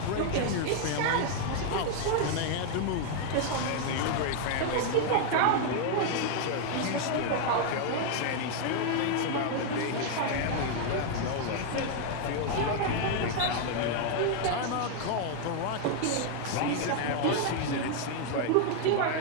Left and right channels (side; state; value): both; different; correlation 0.00